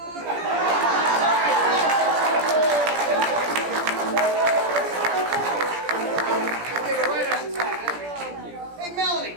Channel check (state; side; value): late; left; 17 ms